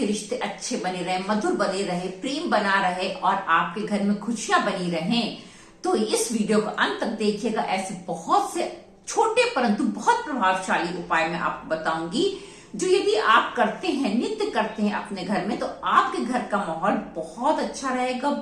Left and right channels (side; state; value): both; identical; correlation 1.00